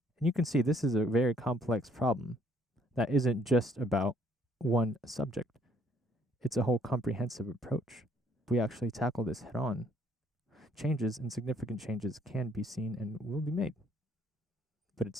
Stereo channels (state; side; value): normal; both; correlation 0.65